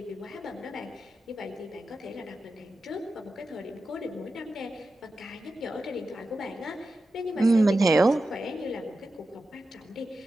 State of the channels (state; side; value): normal; both; correlation 0.91